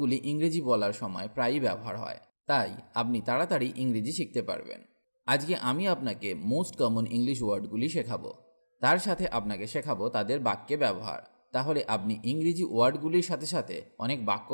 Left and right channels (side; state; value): both; inverted; correlation -1.00